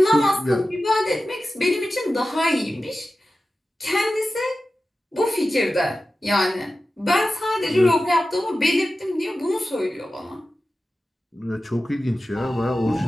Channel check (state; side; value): normal; both; correlation 0.94